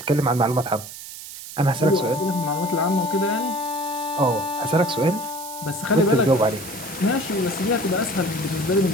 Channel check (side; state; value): right; noise; hiss, 12 dB below the sound